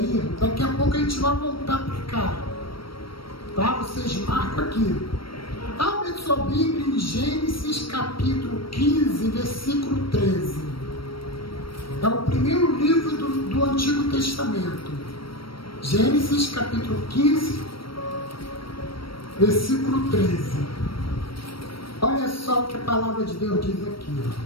daqui a pouco a gente vai voltar para cá. Tá? Vocês marcam aqui. Abre sua Bíblia em Gênesis capítulo 15, versículo 13. É o primeiro livro do Antigo Testamento. Gênesis capítulo 15, versículo 13. Olha só o que a palavra de Deus diz aqui.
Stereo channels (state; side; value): late; right; 0.74 ms